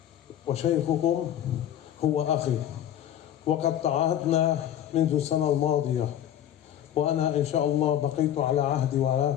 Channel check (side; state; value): right; quieter; 10.8 dB